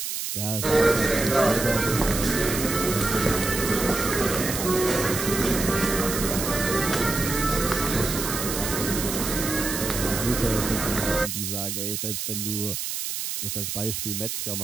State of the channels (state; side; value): noise; right; hiss, 4 dB below the sound